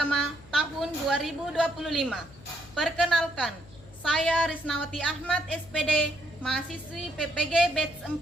tahun 2025. Perkenalkan, saya Risnawati Ahmad SPD, mahasiswi PPG Batch 4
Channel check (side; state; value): left; noise; hum, 22 dB below the sound